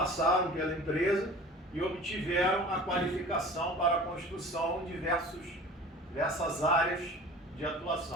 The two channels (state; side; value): normal; both; correlation 0.41